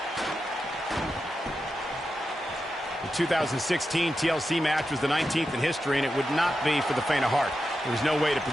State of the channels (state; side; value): normal; both; correlation 0.89